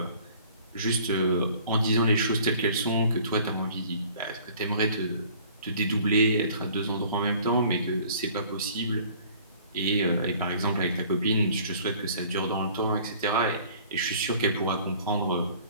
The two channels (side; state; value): both; inverted; correlation -0.52